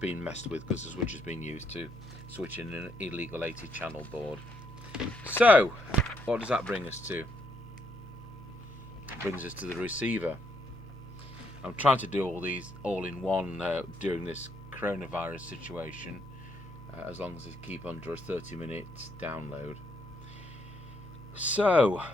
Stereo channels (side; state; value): both; normal; correlation 0.74